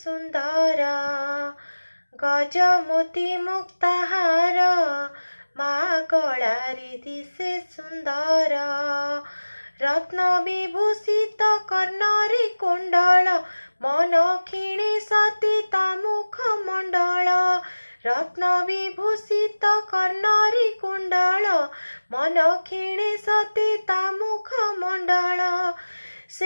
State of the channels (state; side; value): inverted; both; correlation -1.00